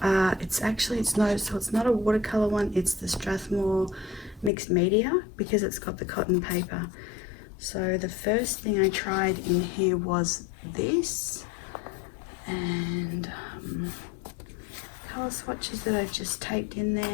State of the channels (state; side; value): drops out; right; at 4.5 s